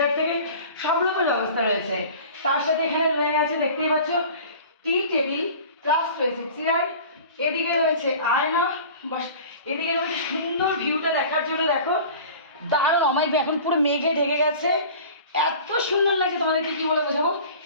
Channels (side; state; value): both; inverted; correlation -0.41